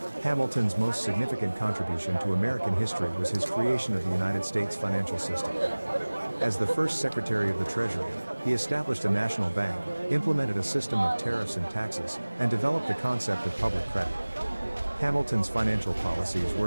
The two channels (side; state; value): both; inverted; correlation -1.00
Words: Hamilton's most significant contribution to American history was his creation of the United States financial system. As the first Secretary of the Treasury, he established a national bank, implemented a system of tariffs and taxes, and developed the concept of public credit. Hamilton's financial policies